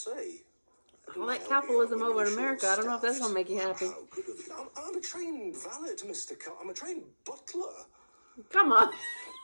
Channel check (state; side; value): inverted; both; correlation -1.00